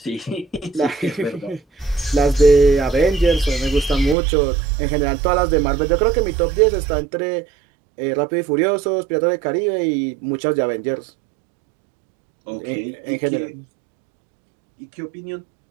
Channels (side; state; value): left; drops out; at 4.2 s